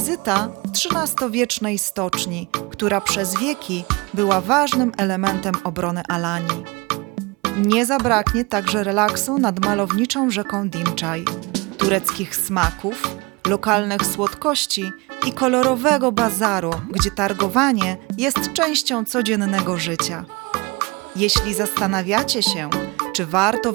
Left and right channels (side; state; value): left; quieter; 26.2 dB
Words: XIII-wiecznej stoczni, która przez wieki była ważnym elementem obrony Alanii. Nie zabraknie także relaksu nad malowniczą rzeką Dimczaj, tureckich smaków, lokalnych słodkości i kolorowego bazaru, gdzie targowanie jest częścią codziennego życia. Jeśli zastanawiacie się, czy warto